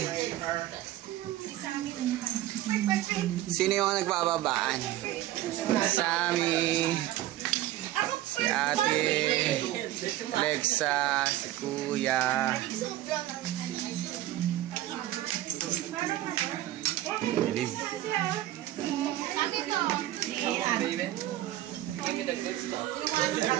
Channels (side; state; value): left; quieter; 14.4 dB